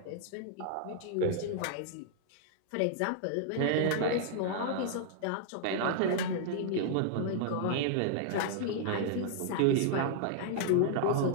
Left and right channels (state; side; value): different; both; correlation -0.01